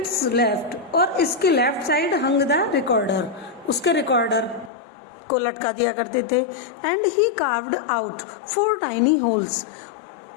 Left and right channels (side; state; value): right; drops out; at 4.7 s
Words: लेफ्ट, और इसके left side hung the recorder, उसके रिकॉर्डर को लटका दिया करते थे। And he carved out 4 tiny holes